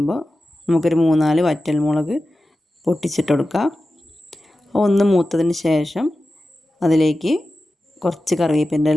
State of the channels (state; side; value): normal; both; correlation 0.93